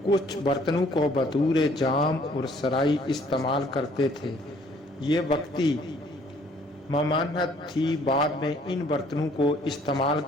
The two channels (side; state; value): both; normal; correlation 0.60